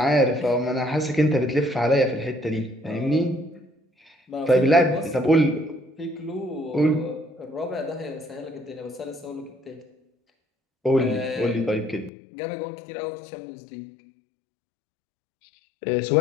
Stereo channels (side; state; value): right; drops out; at 12.1 s